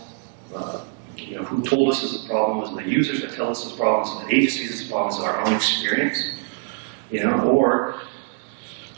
Who told us is the problem? Is it the users that tell us this problem? Is it the agencies this problem? Is it our own experience? Or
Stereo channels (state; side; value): quieter; left; 37.2 dB